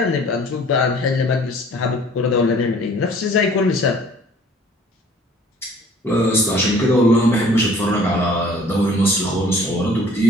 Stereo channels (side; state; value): both; normal; correlation 0.53